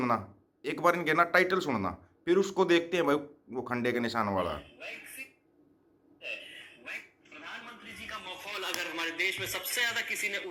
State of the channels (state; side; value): identical; both; correlation 1.00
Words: एक बार इनके ना टाइटल सुनना, फिर उसको देखते हैं भाई वो खंडे के निशान वाला। प्रधानमंत्री जी का मखौल अगर हमारे देश में सबसे ज्यादा किसी ने